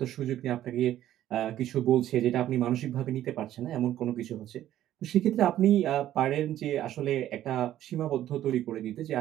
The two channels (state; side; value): quieter; left; 12.6 dB